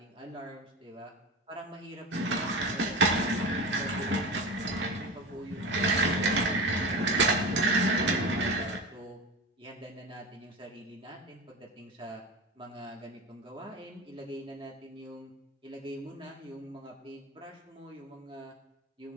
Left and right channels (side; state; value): both; normal; correlation 0.27